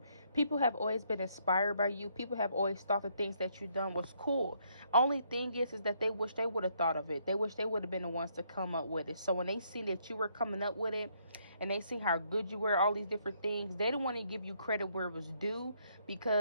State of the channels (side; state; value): both; inverted; correlation -0.71